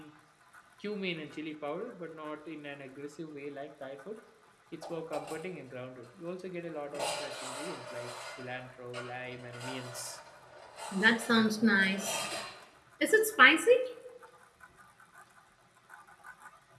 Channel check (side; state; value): both; identical; correlation 1.00